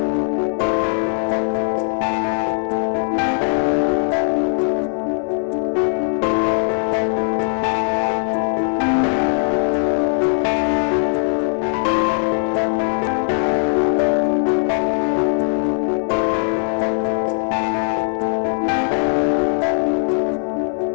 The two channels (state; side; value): silent; right; 56 dB below the other